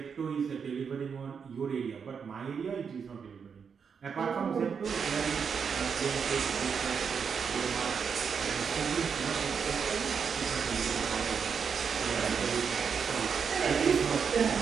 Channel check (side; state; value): left; quieter; 6.4 dB